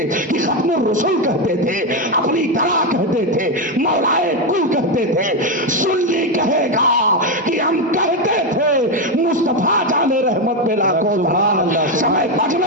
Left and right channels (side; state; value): both; normal; correlation 0.09